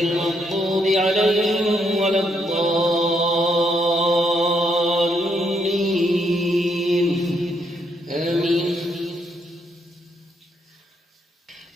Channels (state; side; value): normal; both; correlation 0.74